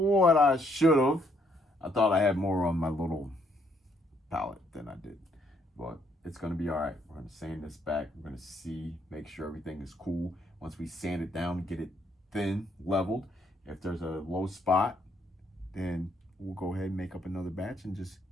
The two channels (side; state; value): both; normal; correlation 0.70